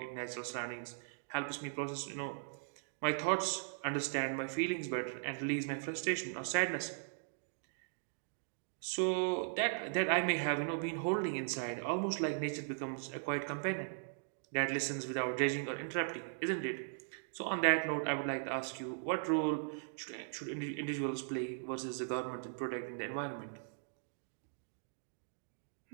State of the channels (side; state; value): left; silent; digital silence